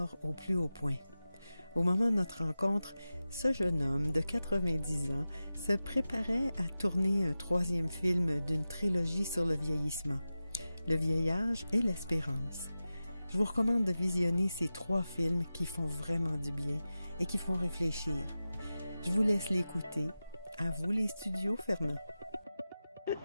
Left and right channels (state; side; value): inverted; both; correlation -0.94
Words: au plus haut point. Au moment de notre rencontre, ce jeune homme de 90 ans se préparait à tourner un 3e film d'une trilogie sur le vieillissement, le vieillage et l'espérance. Je vous recommande de visionner ces 3 films qui font vraiment du bien et qui font réfléchir. Je vous laisse l'écouter. À vous les studios, Fernand. Je